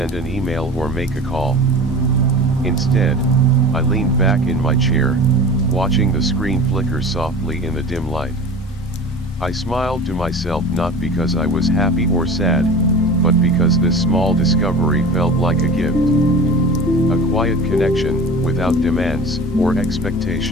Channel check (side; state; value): both; normal; correlation 0.36